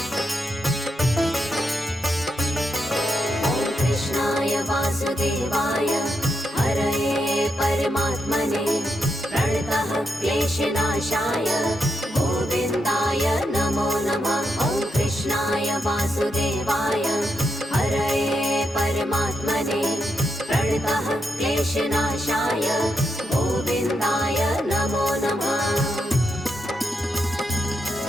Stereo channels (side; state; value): both; normal; correlation 0.83